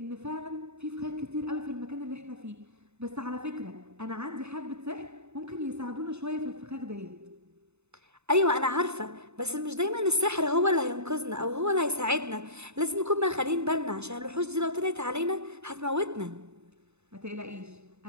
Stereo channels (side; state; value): left; late; 0.81 ms